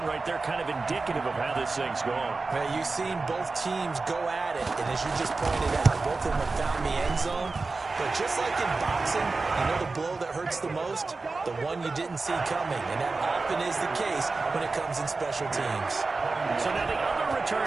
right there kind of indicative of how this thing's going. Man, you've seen both teams go at it, and as you just pointed out, both of them have found the end zone. But just like in boxing, you know the blow that hurts the most? The one you didn't see coming, and that often is the case when it comes in special teams. So now the other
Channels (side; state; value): left; quieter; 3.8 dB